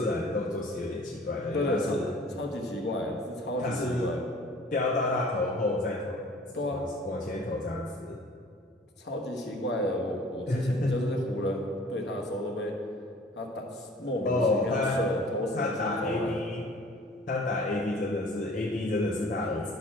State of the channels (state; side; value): normal; both; correlation 0.50